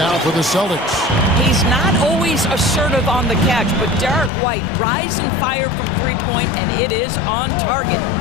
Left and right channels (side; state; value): right; drops out; at 4.3 s